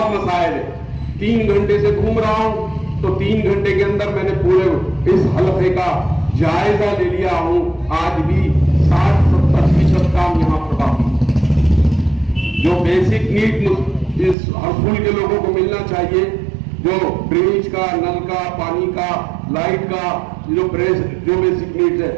मसाइल है, 3 घंटे से घूम रहा हूं, तो 3 घंटे के अंदर मैंने पूरे इस हलके का जायजा ले लिया हूं। आज भी 60-70% काम यहां पर बाकी, जो बेसिक नीड इस हरसूल के लोगों को मिलना चाहिए, जो ड्रेनेज का, नल का, पानी का, लाइट का, जो बेसिक नीड्स है,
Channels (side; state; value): left; drops out; at 14.4 s